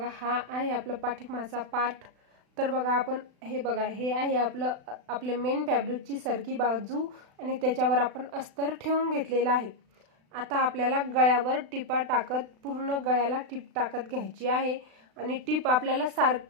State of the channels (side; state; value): left; late; 36 ms